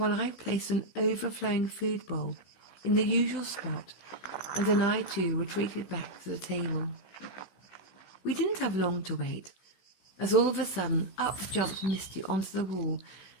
I placed an overflowing food bowl in the usual spot, and then I too retreated back to the table. We didn't have long to wait, as all of a sudden up jumped Misty onto the wall,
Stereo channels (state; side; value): late; right; 16 ms